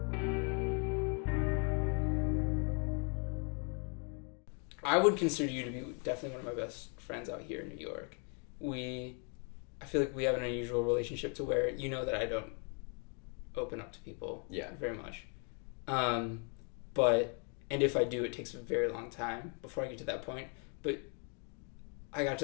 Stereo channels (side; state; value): right; quieter; 39.5 dB